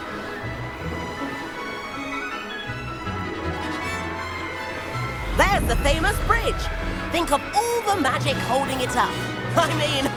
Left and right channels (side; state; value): both; identical; correlation 1.00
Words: There's the famous bridge. Think of all the magic holding it up. I mean,